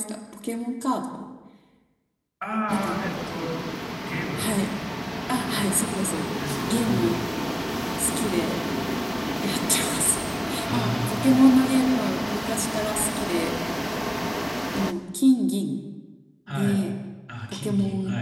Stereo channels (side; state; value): both; identical; correlation 1.00